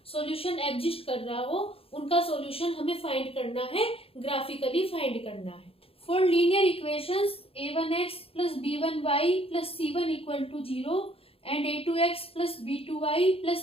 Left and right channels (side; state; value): right; late; 0.27 ms